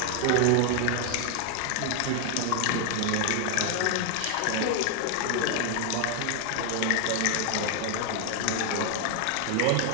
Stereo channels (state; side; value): different; both; correlation 0.00